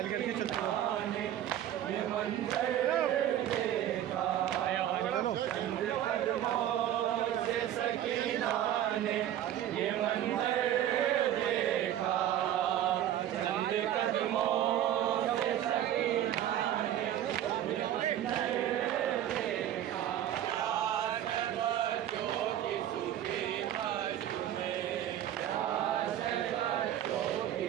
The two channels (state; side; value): quieter; left; 11.5 dB